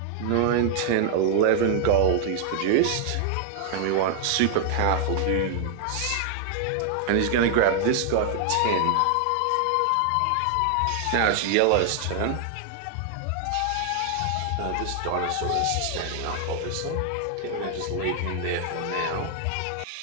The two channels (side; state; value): both; different; correlation 0.00